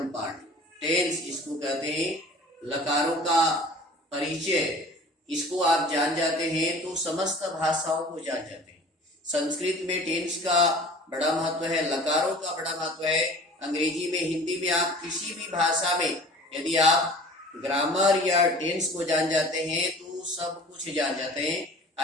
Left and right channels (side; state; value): both; normal; correlation 0.44